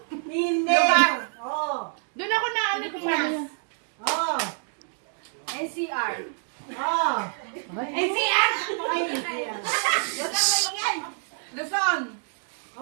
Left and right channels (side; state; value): left; silent; 56 dB below the other